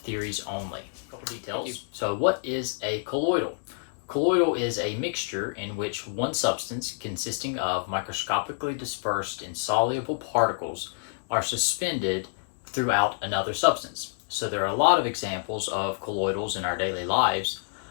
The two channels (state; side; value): silent; right; digital silence